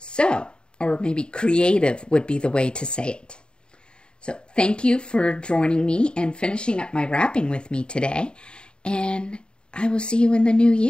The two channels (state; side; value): late; right; 0.050 ms